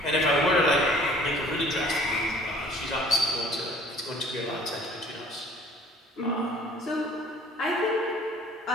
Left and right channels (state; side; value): normal; both; correlation 0.52